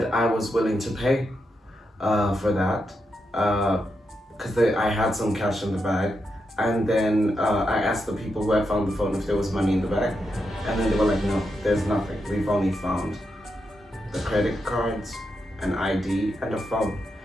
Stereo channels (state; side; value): normal; both; correlation 0.85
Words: I was willing to pay for that because I had some cash in the bag. And then I asked the people who had found the phone if there was money in the bag. And then they were like, no, there's nothing. We've only found the credit cards, an ID, and a phone.